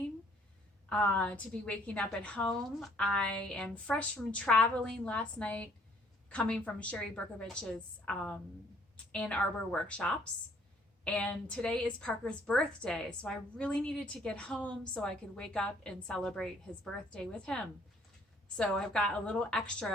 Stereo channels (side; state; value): both; normal; correlation 0.62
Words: to be waking up at home. I am fresh from traveling last night, coming from Sherry Berkovich's Ann Arbor workshops. And today is Parker's birthday, so I really needed to get home so I could wake up and celebrate his birthday with him. So I've got a little